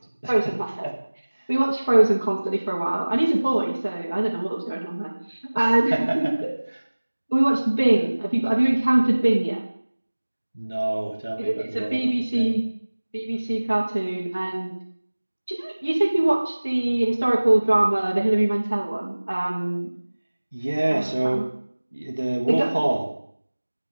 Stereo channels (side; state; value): both; inverted; correlation -1.00